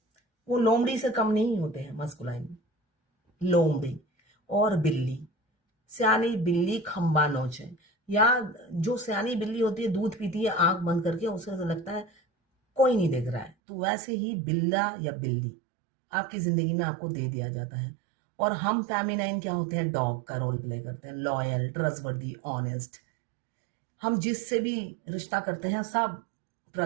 वो लोमड़ी से कम नहीं होते हैं मस्कुलाइन। लोमड़ी और बिल्ली, सियानी बिल्ली खंबा नोचे, या जो सियानी बिल्ली होती है दूध पीती है आंख बंद करके, उसे तो लगता है कोई नहीं देख रहा है, तो वैसे ही बिल्ला या बिल्ली आपकी जिंदगी में आपको दे दिया जाता है। और हम फेमिनाइन क्या होते हैं, डॉग का रोल प्ले करते हैं, लॉयल, ट्रस्टवर्दी, ऑनेस्ट। हम जिससे भी रिश्ता करते हैं सब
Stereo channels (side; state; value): left; drops out; at 13.5 s